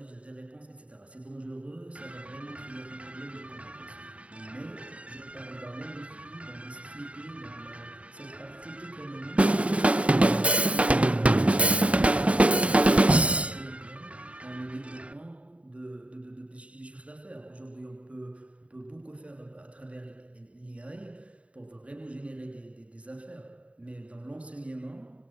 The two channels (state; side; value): late; left; 0.065 ms